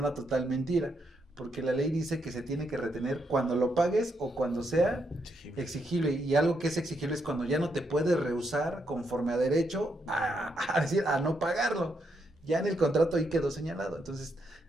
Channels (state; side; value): normal; both; correlation 0.78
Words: total mentira, porque la ley dice que se tiene que retener cuando lo pagues o cuando sea exigible. Y algo que es exigible es cuando ya no te puedes rehusar conforme a derecho a no pagarlo. Ya en el contrato ahí quedó señalado. Entonces,